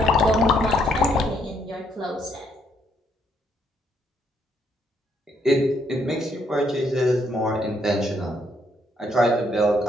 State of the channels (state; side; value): normal; both; correlation 0.72